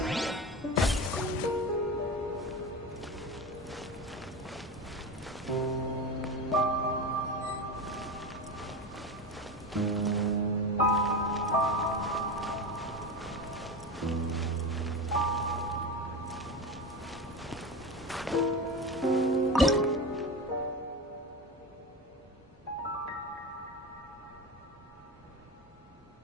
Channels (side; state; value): both; normal; correlation 0.25